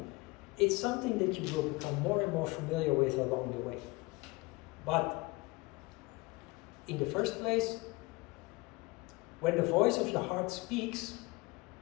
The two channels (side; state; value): right; quieter; 23.9 dB